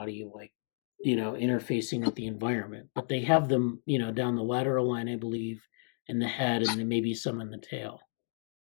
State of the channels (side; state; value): right; silent; digital silence